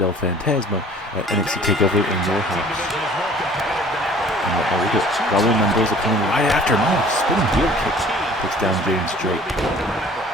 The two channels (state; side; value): normal; both; correlation 0.50